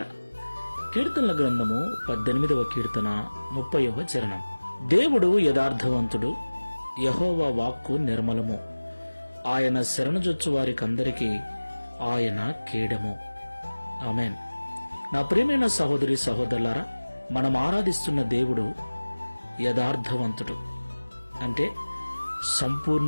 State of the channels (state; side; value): inverted; both; correlation -1.00